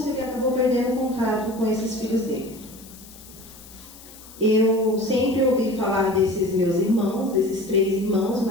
e ele acabou perdendo contato com esses filhos dele. Eu sempre ouvi falar desses meus irmãos, desses 3 irmãos,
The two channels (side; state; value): left; noise; hiss, 20 dB below the sound